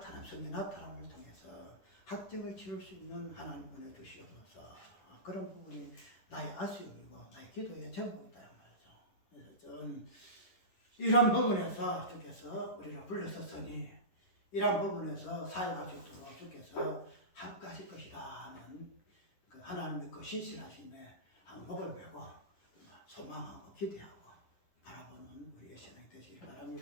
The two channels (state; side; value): late; right; 11 ms